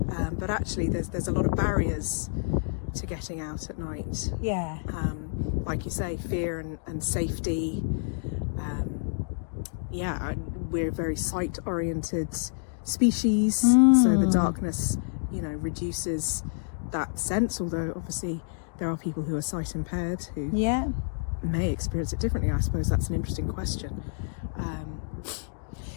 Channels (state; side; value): silent; right; digital silence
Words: But actually, there's a lot of barriers to getting out at night. Yeah. Like you say, fear and safety. We're a very sight-oriented species, so the darkness, reduces that sense. Although obviously there are people who are sight impaired who may experience it differently. I suppose that's an interesting question.